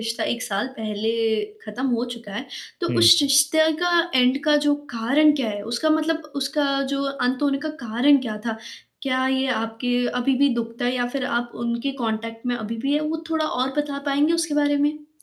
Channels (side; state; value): both; identical; correlation 1.00